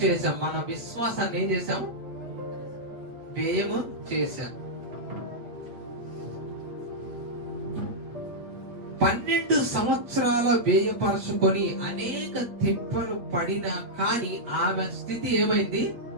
చేశాం. మన విశ్వాసాన్ని ఏం చేశాం, వ్యయము చేశాం. 12 సంవత్సరాల వ్యయపరచుకొని అనేక తిప్పలు పడినా కానీ ఆమె స్థితి ఏమైంది,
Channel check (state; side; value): late; left; 8.3 ms